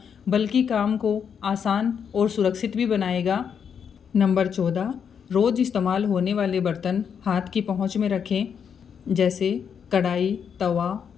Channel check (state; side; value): quieter; right; 7.3 dB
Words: बल्कि काम को आसान और सुरक्षित भी बनाएगा। नंबर 14, रोज़ इस्तेमाल होने वाले बर्तन हाथ की पहुंच में रखें। जैसे कढ़ाई, तवा,